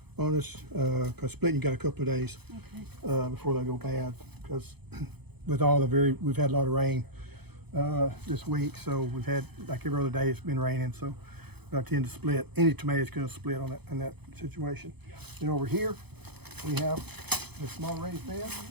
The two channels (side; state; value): left; late; 0.98 ms